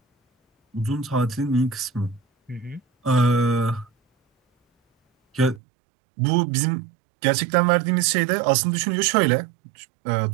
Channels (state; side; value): drops out; left; at 5.6 s